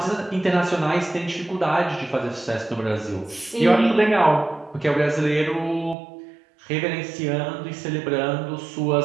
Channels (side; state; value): left; drops out; at 6.0 s